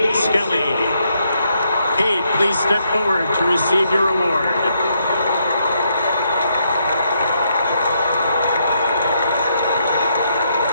Skelly. Cade, please step forward to receive your award.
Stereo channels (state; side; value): inverted; both; correlation -0.76